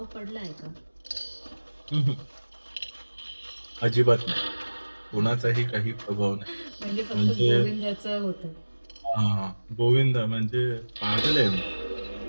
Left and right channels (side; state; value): both; inverted; correlation -1.00